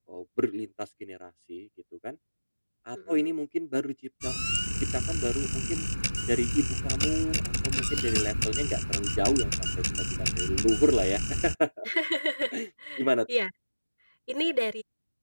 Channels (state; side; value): inverted; both; correlation -1.00